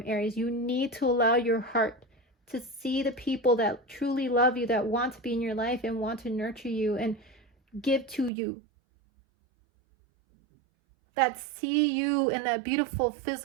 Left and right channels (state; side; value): drops out; left; at 8.3 s